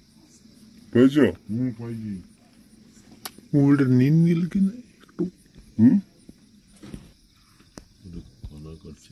পেয়েছ? মোবিলটা নিন গেল কিনা একটু।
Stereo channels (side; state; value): both; identical; correlation 1.00